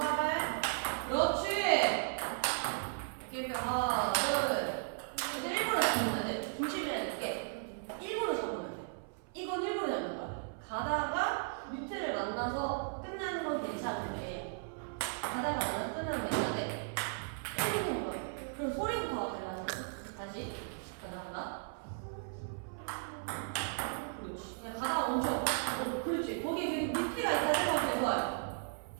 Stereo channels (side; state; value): left; silent; 54 dB below the other